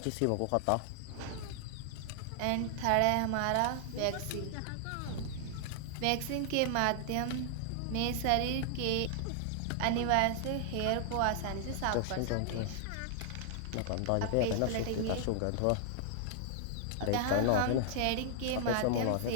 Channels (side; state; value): both; different; correlation -0.01